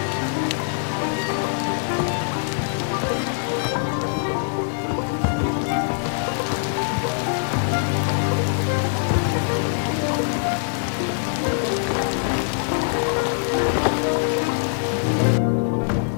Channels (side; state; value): right; silent; digital silence